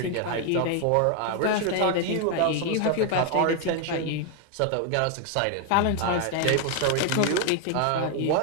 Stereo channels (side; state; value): both; different; correlation 0.01